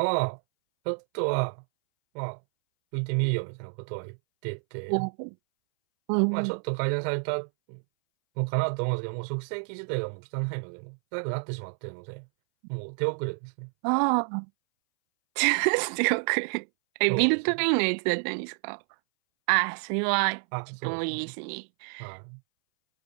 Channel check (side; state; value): left; silent; 59 dB below the other